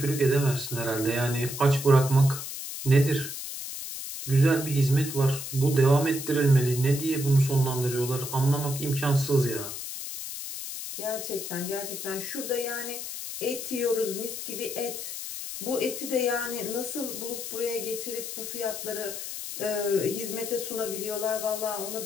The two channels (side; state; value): left; noise; hiss, 7 dB below the sound